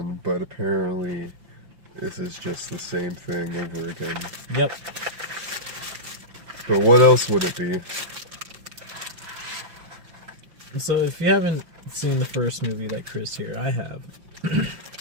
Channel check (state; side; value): late; left; 5.8 ms